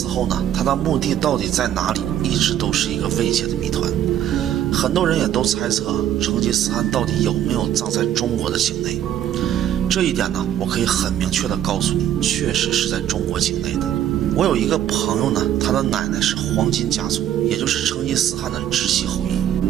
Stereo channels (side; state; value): left; quieter; 11.0 dB